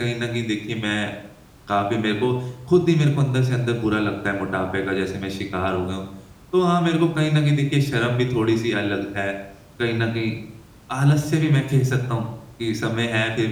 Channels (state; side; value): identical; both; correlation 1.00